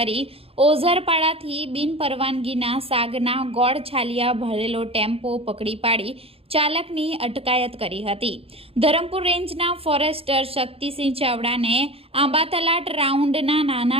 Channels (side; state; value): left; late; 0.28 ms